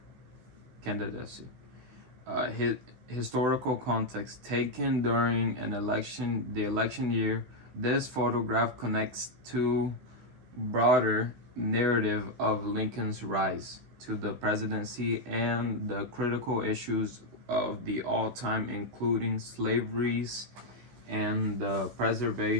His historical context taken during the election year. This photograph connects to broader narrative of Lincoln's rise to the presidency and the critical issues of the all time, including slaveries and the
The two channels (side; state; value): left; late; 16 ms